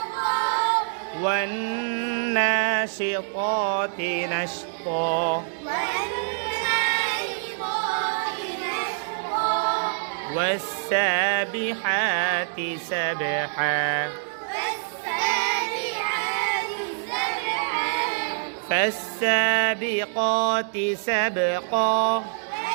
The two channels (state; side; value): silent; left; digital silence